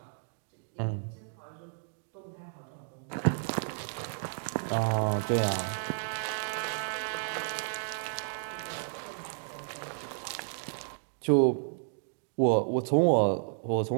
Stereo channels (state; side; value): silent; left; digital silence